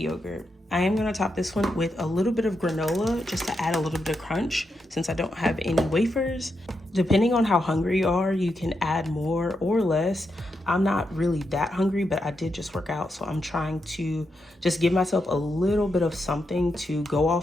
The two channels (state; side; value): normal; both; correlation 0.84